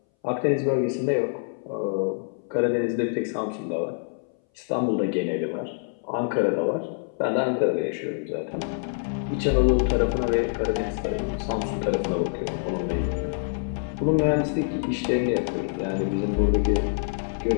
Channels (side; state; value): right; silent; 60 dB below the other